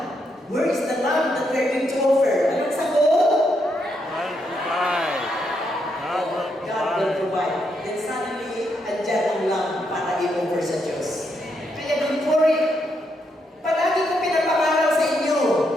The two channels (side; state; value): both; normal; correlation 0.79